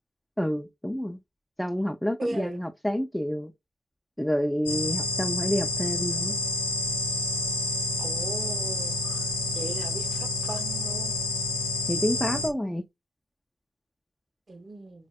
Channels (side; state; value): both; normal; correlation 0.50